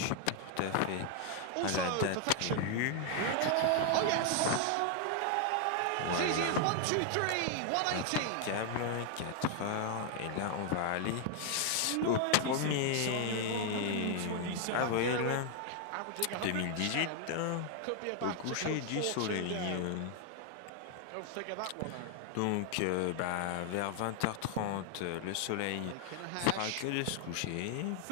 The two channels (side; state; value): both; different; correlation 0.00